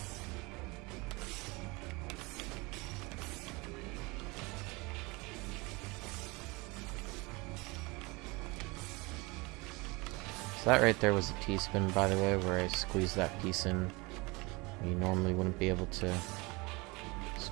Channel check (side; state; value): left; quieter; 25.6 dB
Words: So that right there was a T-spin, by the way, where I squeezed that piece in. You normally wouldn't be able to